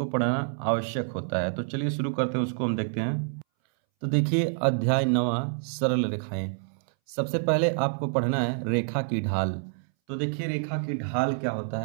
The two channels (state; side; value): silent; left; 60 dB below the other